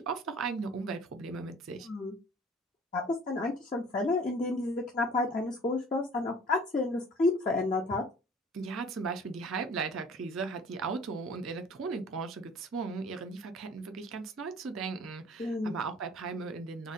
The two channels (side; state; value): both; normal; correlation 0.49